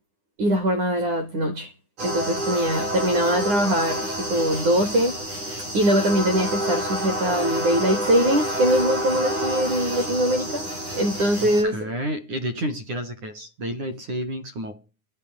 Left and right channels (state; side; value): late; left; 9.8 ms